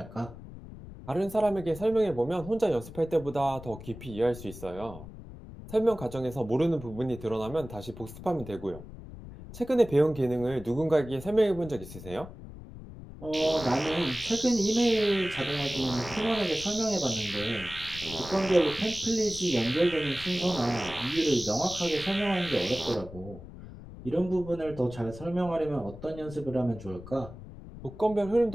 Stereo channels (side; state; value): left; noise; rumble, 14 dB below the sound